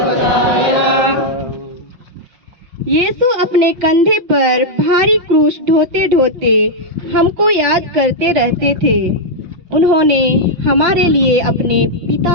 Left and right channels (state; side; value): late; left; 5.6 ms